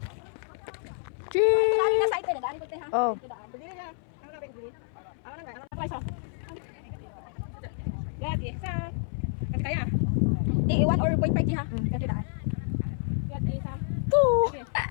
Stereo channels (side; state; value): right; silent; 59 dB below the other